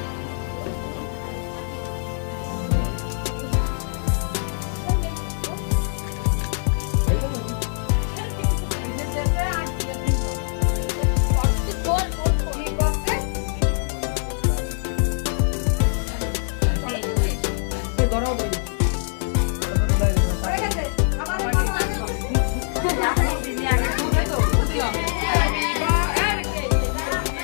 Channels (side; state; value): right; silent; 63 dB below the other